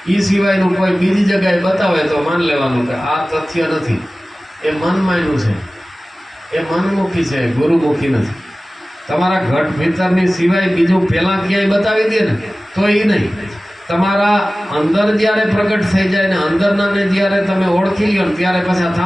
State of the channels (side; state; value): both; normal; correlation 0.97